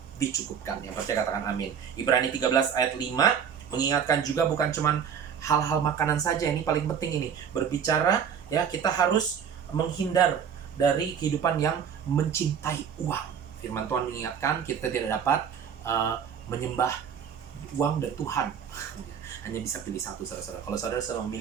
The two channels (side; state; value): left; quieter; 7.7 dB